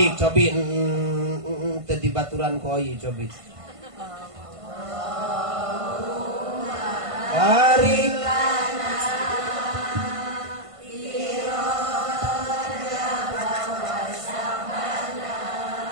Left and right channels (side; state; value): left; late; 1.5 ms